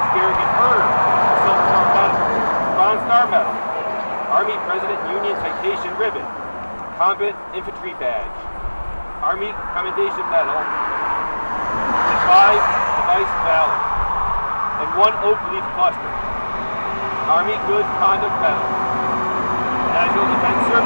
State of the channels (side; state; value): both; inverted; correlation -1.00